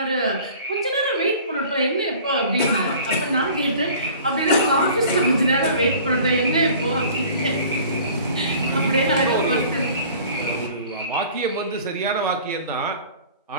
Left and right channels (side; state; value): both; inverted; correlation -0.47